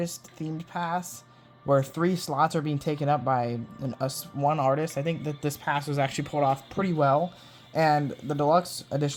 themed pass, where 3 slots are being taken up by one artist, I think that this pass was actually pulled off pretty well, and the deluxe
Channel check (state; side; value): identical; both; correlation 1.00